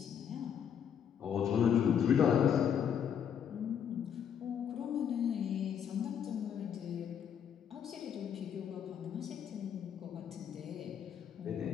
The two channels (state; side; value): quieter; right; 8.4 dB